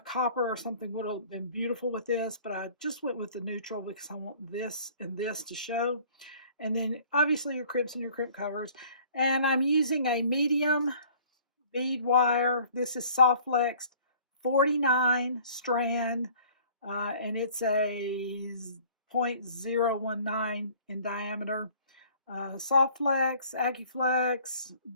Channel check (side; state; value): both; inverted; correlation -0.52